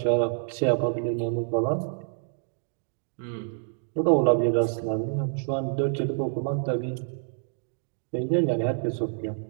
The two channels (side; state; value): left; silent; digital silence